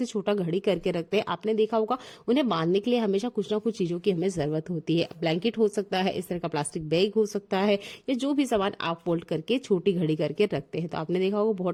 छोटा घड़ी करके रखते हैं। आपने देखा होगा उन्हें बांधने के लिए हमेशा कुछ ना कुछ चीजों की हमें जरूरत होती है। ब्लैंकेट हो सकता है, इस तरह का प्लास्टिक बैग हो सकता है, या जो भी सामान आप फोल्ड करके छोटी घड़ी करके रखते हैं। तो आपने देखा होगा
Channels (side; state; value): both; identical; correlation 1.00